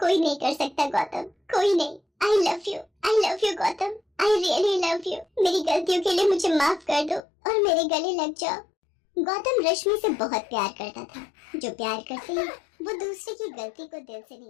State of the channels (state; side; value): drops out; right; at 7.2 s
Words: नहीं कर सकता गौतम, कोई नहीं। I love you Gautam, I really love you. मेरी गलतियों के लिए मुझे माफ कर दो और मेरे गले लग जाओ। गौतम रश्मि से बहुत प्यार करता था। जो प्यार करते हैं वो दूसरे की गलती को दिल से नहीं